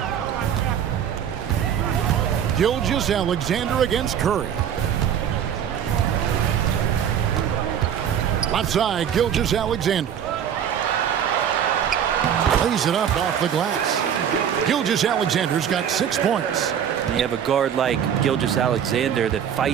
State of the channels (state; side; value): quieter; left; 8.9 dB